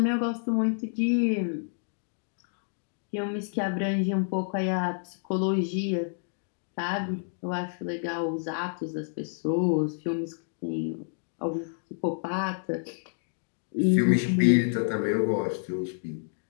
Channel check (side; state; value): right; silent; digital silence